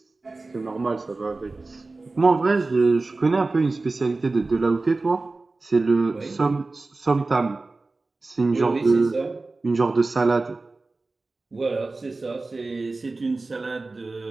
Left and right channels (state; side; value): quieter; left; 3.4 dB